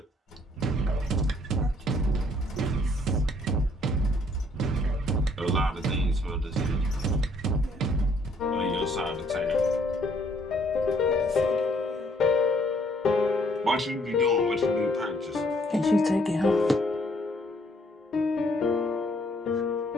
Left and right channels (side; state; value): both; normal; correlation 0.66